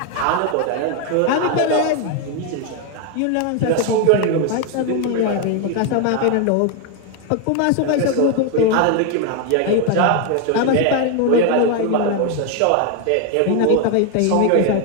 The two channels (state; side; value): different; both; correlation 0.01